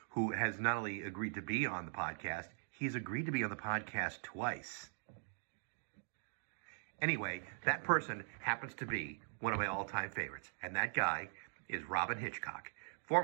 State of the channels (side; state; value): left; silent; digital silence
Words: who has not only agreed to be on the podcast, he's agreed to be on the podcast twice. Anyway, that person happens to be one of my all-time favorites, and that guy is Robyn Hitchcock,